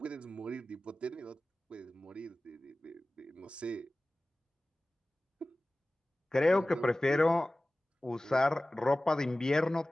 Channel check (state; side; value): normal; both; correlation 0.97